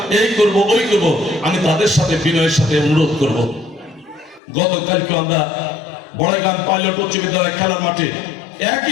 এই করব ওই করব, আমি তাদের সাথে বিনয়ের সাথে অনুরোধ করব। গতকালকে আমরা বড়াইগ্রাম পাইলট উচ্চ বিদ্যালয় খেলার মাঠে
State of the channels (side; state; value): right; drops out; at 4.4 s